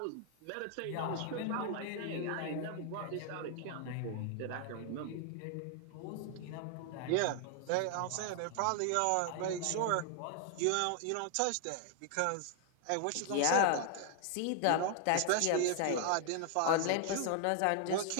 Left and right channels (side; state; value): both; different; correlation 0.00